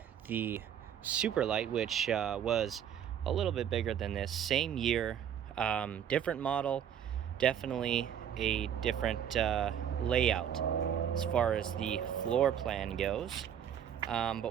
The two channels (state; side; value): quieter; left; 9.2 dB